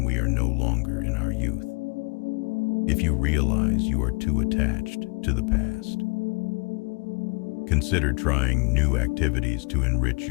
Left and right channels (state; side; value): quieter; right; 30.2 dB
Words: we are no longer in our youth. If you realize you are too attached to the past, consider trying new activities to enrich